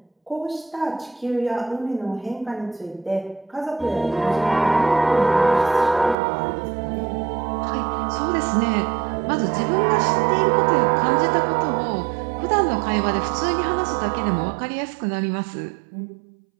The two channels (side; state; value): left; drops out; at 6.2 s